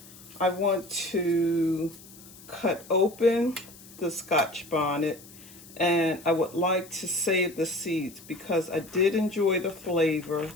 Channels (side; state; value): left; noise; hiss, 20 dB below the sound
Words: I want to cut open the Scotch bonnet, and I would like to save the seeds because I did enjoy the flavor